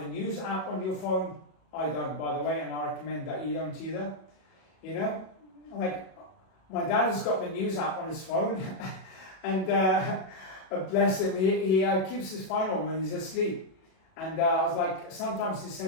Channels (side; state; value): right; late; 37 ms